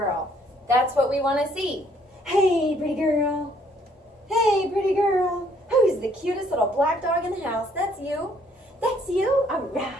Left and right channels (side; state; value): both; normal; correlation 0.64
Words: That's what we want to see. Hey, pretty girl. Hey, pretty girl. Who's the cutest little black dog in the house? That's you. That's you? All